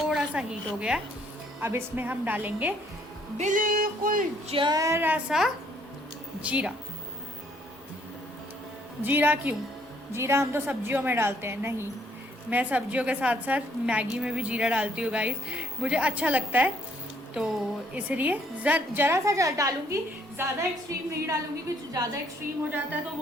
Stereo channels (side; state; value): both; normal; correlation 0.66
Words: सा हीट हो गया है। अब इसमें हम डालेंगे बिल्कुल जरा सा जीरा। जीरा क्यों? जीरा हम तो सब्जियों में डालते हैं। नहीं, मैं सब्जियों के साथ साथ मैगी में भी जीरा डालती हूँ गाइस, मुझे अच्छा लगता है। तो इसलिए जरा सा डालूंगी, ज़्यादा एक्सट्रीम नहीं डालूंगी, क्योंकि ज़्यादा एक्सट्रीम हो जाता है तो